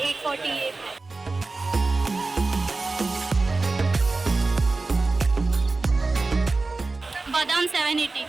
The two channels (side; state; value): left; quieter; 3.6 dB